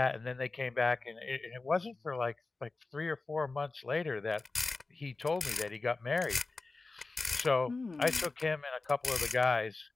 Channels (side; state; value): right; quieter; 3.6 dB